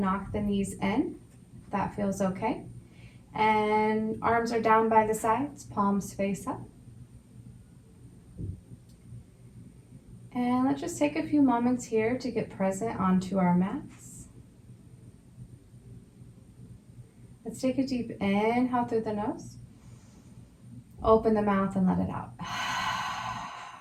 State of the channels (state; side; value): identical; both; correlation 1.00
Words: the knees in, if that feels okay. And arms are down by the sides, palms face up. And let's just take a few moments here to get present onto our mats. Let's take a deep inhale through the nose. Open the mouth and let it out.